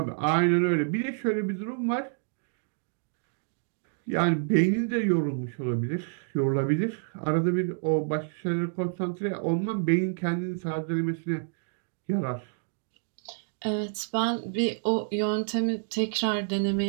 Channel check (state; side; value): silent; left; 59 dB below the other